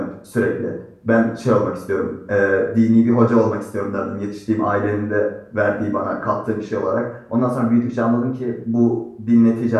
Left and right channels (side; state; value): both; identical; correlation 1.00